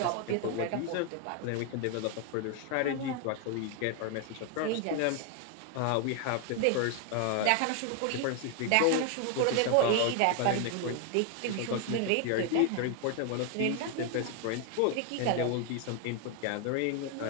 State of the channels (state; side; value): different; both; correlation 0.00